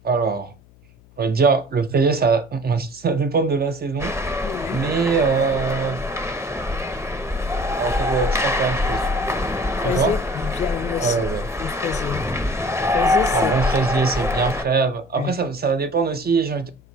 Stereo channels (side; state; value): left; noise; hum, 27 dB below the sound